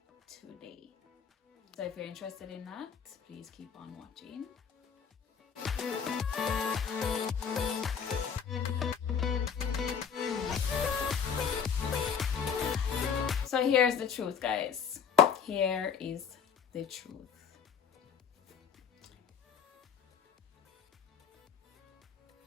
today. So if you're interested in that, please keep on watching. So here's the truth, guys. Here is the truth.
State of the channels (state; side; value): quieter; right; 7.1 dB